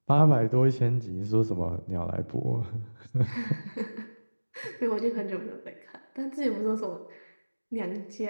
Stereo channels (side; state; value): both; inverted; correlation -1.00